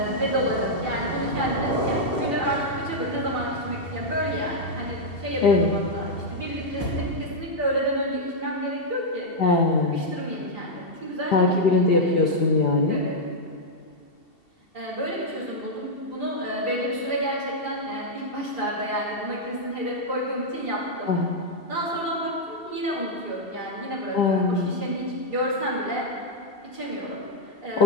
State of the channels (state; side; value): late; right; 2.7 ms